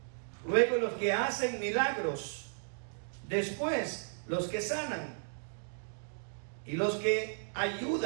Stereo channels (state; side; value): silent; left; digital silence